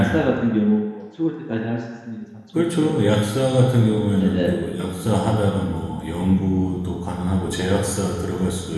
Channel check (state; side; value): identical; both; correlation 1.00